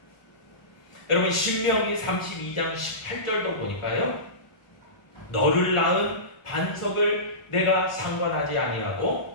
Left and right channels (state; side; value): late; right; 1.4 ms